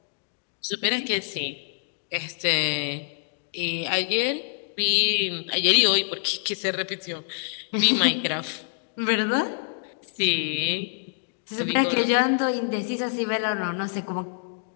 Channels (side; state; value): right; silent; digital silence